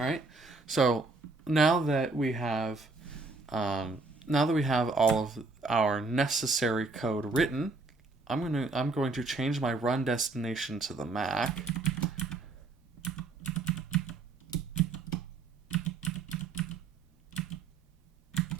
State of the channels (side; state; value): left; quieter; 3.7 dB